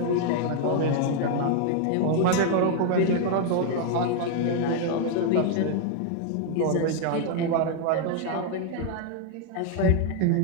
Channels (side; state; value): both; different; correlation 0.00